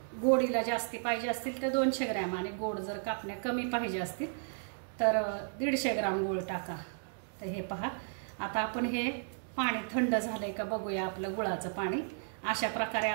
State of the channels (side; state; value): left; silent; digital silence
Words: गोडीला जास्ती पाहिजे असतील तर 200 ग्रॅम, आणि गोड जर कापण्या कमी पाहिजे असतील तर 150 ग्रॅम गूळ टाका. तर हे पहा, आता आपण हे पाणी थंड झालंय का बघूया, आपलं गुळाचं पाणी. अशा प्रकारे